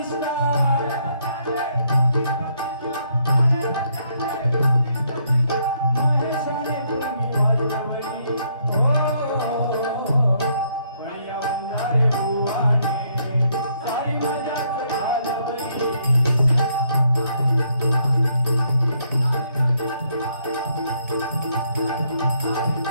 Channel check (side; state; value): both; inverted; correlation -0.71